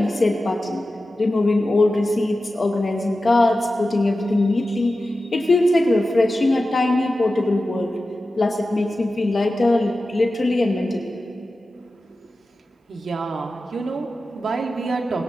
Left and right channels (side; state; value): both; normal; correlation 0.94